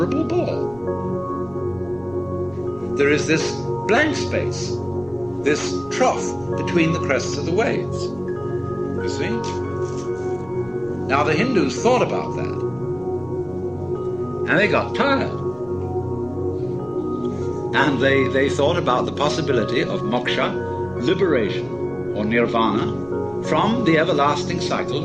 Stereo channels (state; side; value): noise; left; rumble, 24 dB below the sound